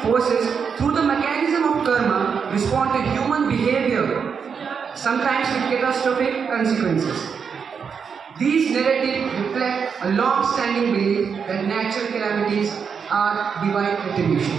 forces, through the mechanism of karma, respond to human behavior, sometimes with catastrophic consequences. These narratives reflect a long-standing belief that natural calamities are divine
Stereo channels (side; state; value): left; quieter; 6.4 dB